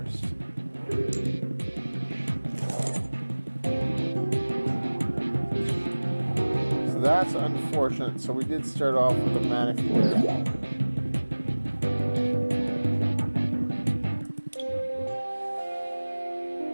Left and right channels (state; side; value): inverted; both; correlation -1.00